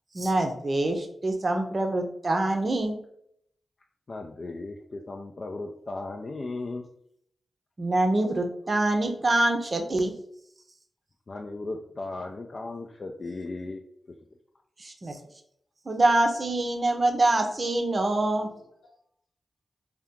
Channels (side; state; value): both; normal; correlation 0.93